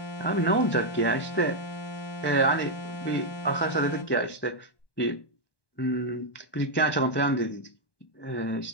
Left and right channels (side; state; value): right; late; 1.1 ms